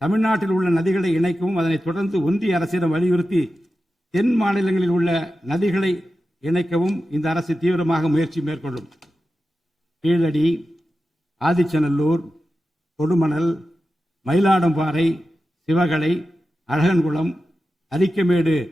தமிழ்நாட்டில் உள்ள நதிகளை இணைக்கவும் அதனை தொடர்ந்து ஒன்றிய அரசிடம் வலியுறுத்தி தென் மாநிலங்களில் உள்ள நதிகளை இணைக்கவும் இந்த அரசு தீவிரமாக முயற்சி மேற்கொள்ளும். கீழடி, ஆதிச்சநல்லூர், கொடுமணல், மயிலாடும்பாறை, சிவகலை, அழகன்குளம், அரிக்கமேடு,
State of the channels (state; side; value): normal; both; correlation 0.92